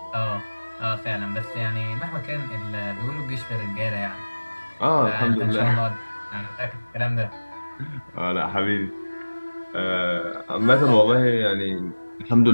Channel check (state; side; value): inverted; both; correlation -1.00